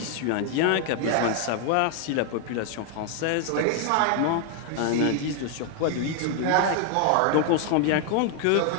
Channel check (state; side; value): different; both; correlation 0.00